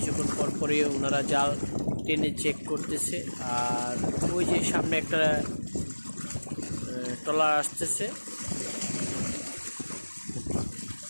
পর পরে ওনারা জাল টেনে চেক করতেছে। আর ওই যে সামনে একটা ট্রলার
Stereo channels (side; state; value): both; inverted; correlation -1.00